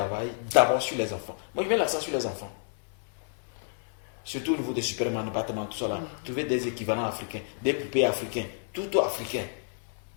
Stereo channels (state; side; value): silent; right; 58 dB below the other